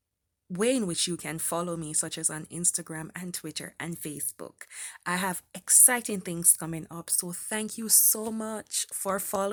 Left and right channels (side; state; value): both; identical; correlation 1.00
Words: way in which you can follow me, such as on Instagram and Twitter and Facebook. I have exciting things coming up. So thank you so much for